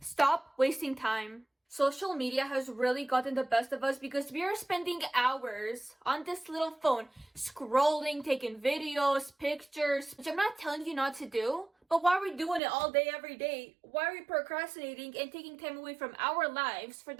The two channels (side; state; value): left; drops out; at 12.6 s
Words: Stop wasting time. Social media has really gotten the best of us because we are spending hours on this little phone, scrolling, taking videos, pictures, which I'm not telling you not to do, but why are we doing it all day, every day? Why are we procrastinating and taking time away from our lives for